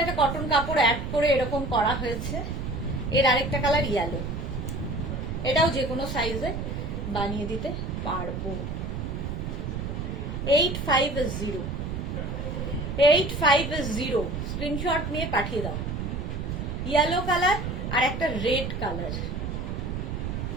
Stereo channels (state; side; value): noise; right; rumble, 4 dB below the sound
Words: একটা কটন কাপড় অ্যাড করে এরকম করা হয়েছে। এর আরেকটা কালার ইয়েলো, এটাও যে কোনো সাইজে বানিয়ে দিতে পারবো। 850, 850, স্ক্রিনশট নিয়ে পাঠিয়ে দাও। ইয়েলো কালার আর একটা রেড কালার,